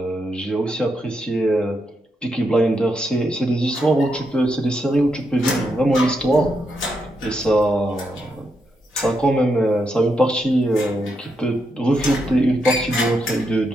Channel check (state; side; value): normal; both; correlation 0.82